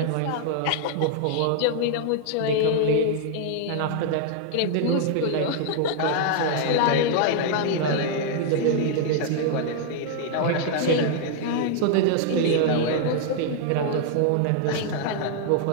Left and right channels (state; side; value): different; both; correlation 0.00